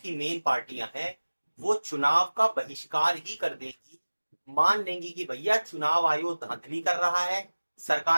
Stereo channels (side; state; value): both; inverted; correlation -1.00